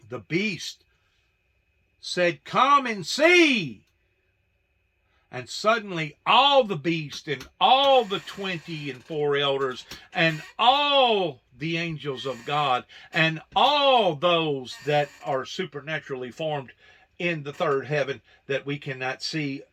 the beast said, "Come and see." And suddenly all the beasts and all the 24 elders and all the angels of God and all those that are supernaturally formed in the third heaven that we cannot see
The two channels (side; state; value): both; identical; correlation 1.00